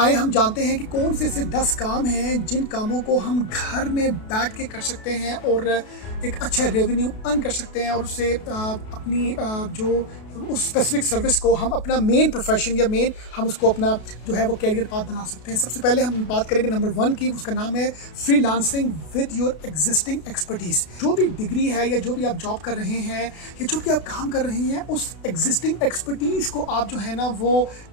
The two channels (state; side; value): late; right; 32 ms